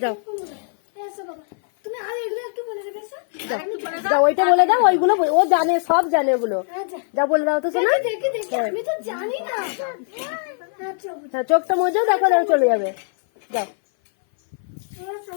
যাও এসো বাবা তুমি আর এগুলো একটু বলে দেবে। এসো যাও, ওইটা বলে দাও, ওইগুলো ও জানে, সব জানে ওগুলো। আচ্ছা যা বলে দাও তো শোনা। দেখি দেখি আমি তো জানি না। আচ্ছা হ্যাঁ, চোখটা মজা দেখো, দেখো চলে যাবে। যাও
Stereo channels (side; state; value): right; silent; 59 dB below the other